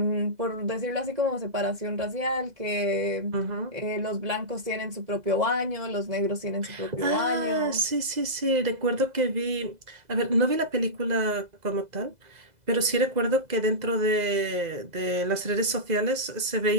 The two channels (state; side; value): late; left; 2.0 ms